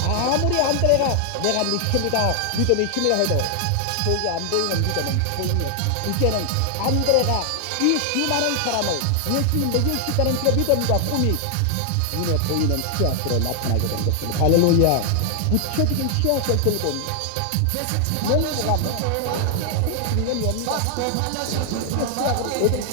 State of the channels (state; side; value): different; both; correlation 0.00